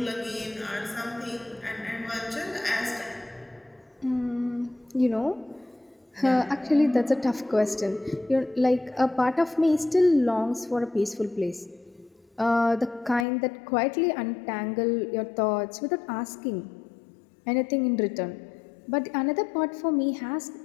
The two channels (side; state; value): right; drops out; at 13.2 s